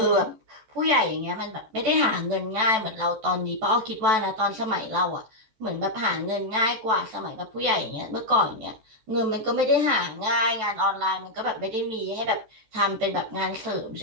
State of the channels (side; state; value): left; late; 14 ms